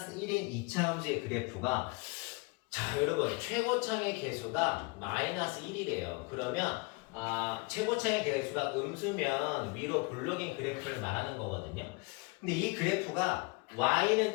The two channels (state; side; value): quieter; right; 27.9 dB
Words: 1인 2차 함수의 그래프가 자 여러분 최고창의 개수가 마이너스 1이래요. 그러면 최고창의 개수가 음수면 위로 볼록인 그래프를 말하는 거거든요. 근데 이 그래프가